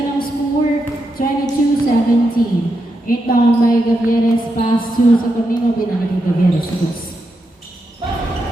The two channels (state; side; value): normal; both; correlation 0.85